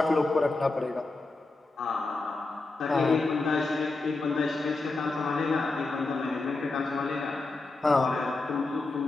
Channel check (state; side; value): quieter; right; 3.4 dB